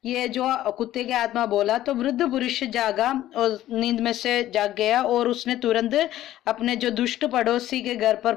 ये जो कुत्ते की आत्मा बोला। तो वृद्ध पुरुष जागा और नींद में से जाग गया और उसने तुरंत अपने जो दुष्ट पड़ोसी के घर पर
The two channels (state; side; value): quieter; right; 13.7 dB